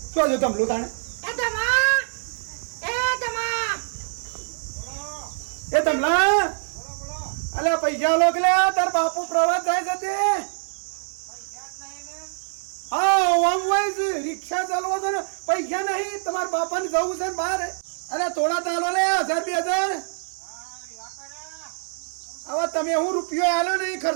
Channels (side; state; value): left; silent; digital silence